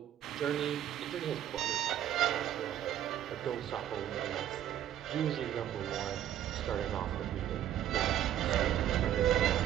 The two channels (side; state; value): left; quieter; 11.2 dB